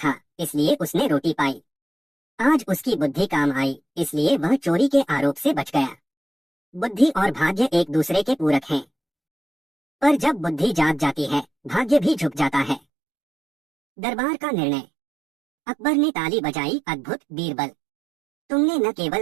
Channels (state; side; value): drops out; left; at 12.8 s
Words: इसलिए उसने रोटी पाई। आज उसकी बुद्धि काम आई, इसलिए वह चोरी के आरोप से बच गया। बुद्धि और भाग्य एक दूसरे के पूरक हैं, पर जब बुद्धि जाग जाती है, भाग्य भी झुक जाता है। दरबार का निर्णय। अकबर ने ताली बजाई, अद्भुत बीरबल, तुमने न